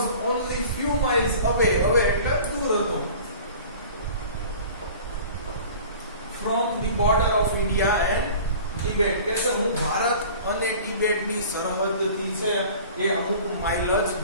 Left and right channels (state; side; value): inverted; both; correlation -0.43